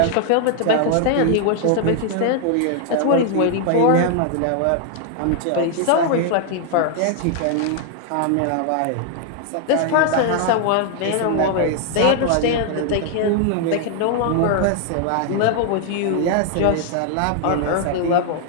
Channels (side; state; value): both; different; correlation 0.00